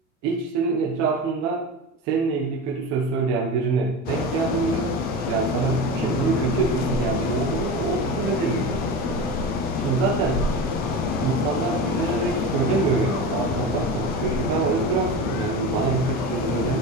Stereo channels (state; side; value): normal; both; correlation 0.26